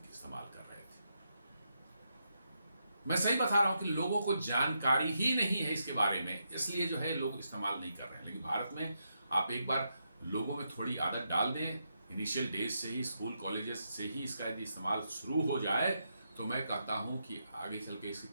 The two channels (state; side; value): inverted; both; correlation -0.82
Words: इस्तेमाल कर रहे थे। मैं सही बता रहा हूं कि लोगों को जानकारी ही नहीं है इसके बारे में, इसलिए जो है लोग इस्तेमाल नहीं कर रहे हैं। लेकिन भारत में आप एक बार लोगों में थोड़ी आदत डाल दें, इनिशियल डेज से ही, स्कूल कॉलेजेस से ही इसका यदि इस्तेमाल शुरू हो जाए तो मैं कहता हूं कि आगे चल के इसके